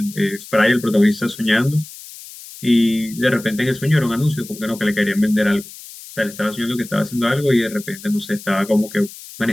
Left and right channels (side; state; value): left; noise; hiss, 16 dB below the sound